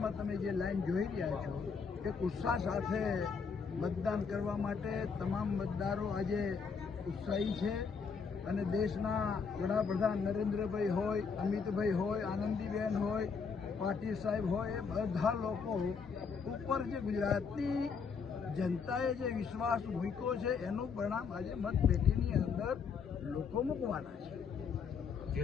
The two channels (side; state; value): right; quieter; 5.7 dB